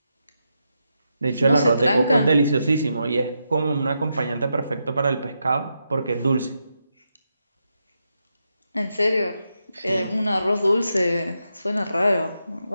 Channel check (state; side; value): inverted; both; correlation -0.84